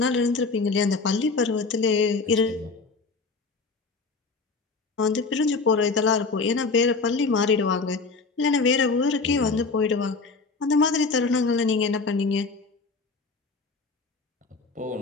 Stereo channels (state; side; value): quieter; right; 4.1 dB